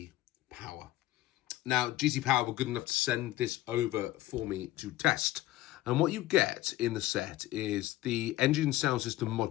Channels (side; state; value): right; quieter; 16.3 dB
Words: Power. Now, GT Power were good enough to send this over for me to test. And what you get in the set is the engine sound system